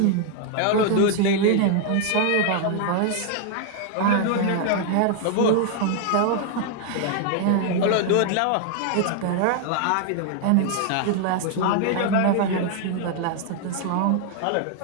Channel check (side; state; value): both; different; correlation 0.00